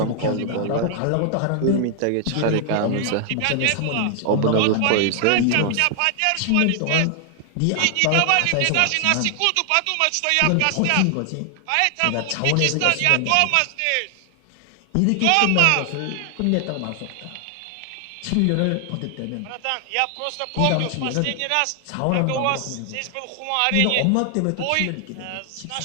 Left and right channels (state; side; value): different; both; correlation 0.00